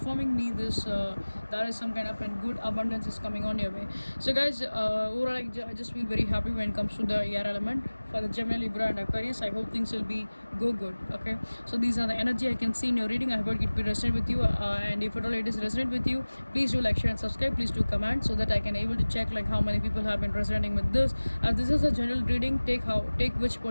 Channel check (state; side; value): inverted; both; correlation -1.00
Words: me this there is some kind of a good abundance is coming on your way. So guys, overall I just feel very happy when it comes to the air element for the Gemini, Libra and Aquarius. I hope things will be go good. Okay, so these are the energy I can see in your reading. I hope it will resonate with you, and if at all it is resonate with you, please do like, share and subscribe. Please do comment so that I can able to check how many people have been resonating with this. This is a general reading. Take which